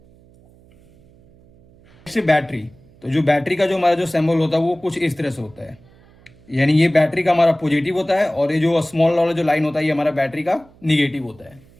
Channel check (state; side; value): noise; right; hum, 28 dB below the sound